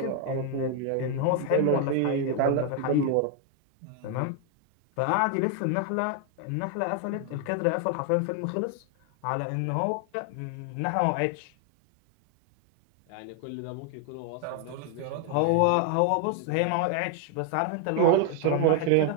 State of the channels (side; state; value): both; different; correlation 0.00